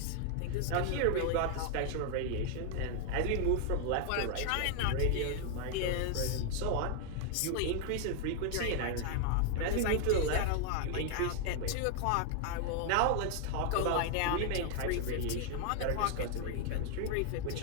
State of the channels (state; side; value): different; both; correlation 0.00